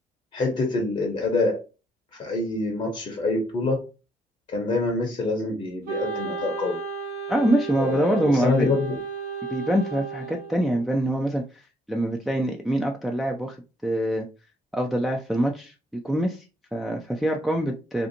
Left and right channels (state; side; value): normal; both; correlation 0.71